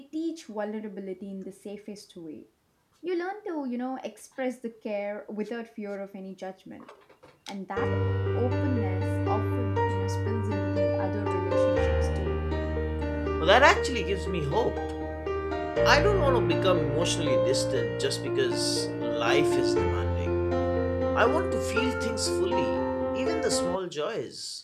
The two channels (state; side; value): identical; both; correlation 1.00